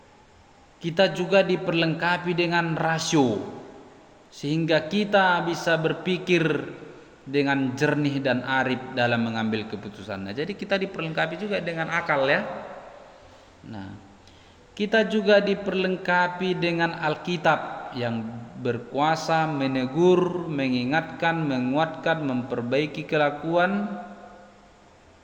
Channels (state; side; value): identical; both; correlation 1.00